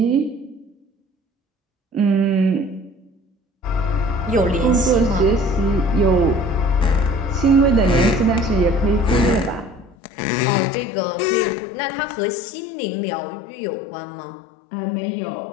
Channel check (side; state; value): right; drops out; at 10.0 s